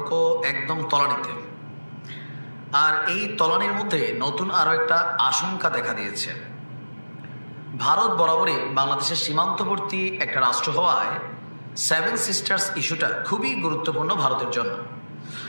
একদম তলানিতে, আর এই তলানির মধ্যে নতুন আরও একটা আশঙ্কা দেখা দিয়েছে। ভারত বরাবরই বাংলাদেশের সীমান্তবর্তী একটা রাষ্ট্র হওয়ায় সেভেন সিস্টার্স ইস্যুটা খুবই গুরুত্বপূর্ণ ভারতের জন্য।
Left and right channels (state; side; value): inverted; both; correlation -1.00